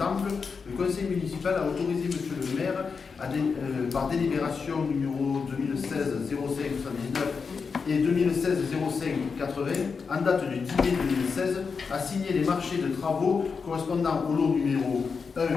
le conseil municipal a autorisé M. le maire, par délibération numéro 2016-05-79 et 2016-05-80, en date du 10 mai 2016, à signer les marchés de travaux correspondant au lot numéro 1,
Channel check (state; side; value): quieter; right; 5.3 dB